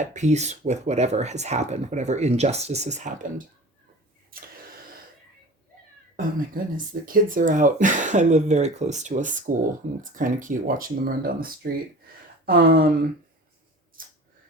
peace with whatever has happened, whatever injustice has happened. Oh my goodness, the kids are out. I live very close to a school, and it's kind of cute watching them run down the street. Um,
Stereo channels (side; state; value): both; normal; correlation 0.39